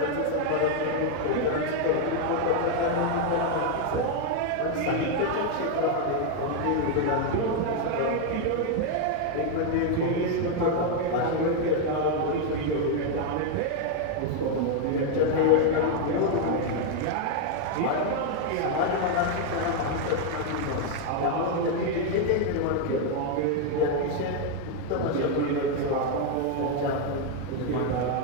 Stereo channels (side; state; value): both; different; correlation 0.01